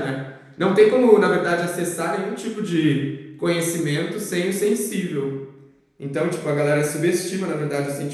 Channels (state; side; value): identical; both; correlation 1.00